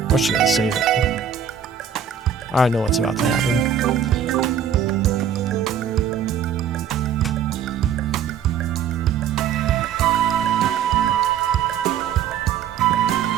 What's she gonna save it? I know what's about to happen.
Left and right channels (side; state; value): left; quieter; 8.0 dB